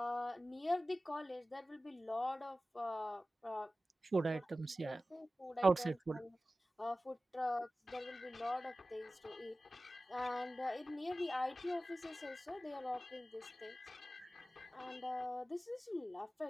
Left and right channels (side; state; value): both; normal; correlation 0.96